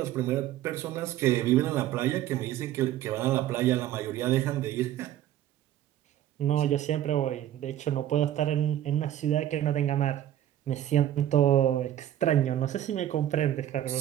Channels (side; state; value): left; quieter; 12.3 dB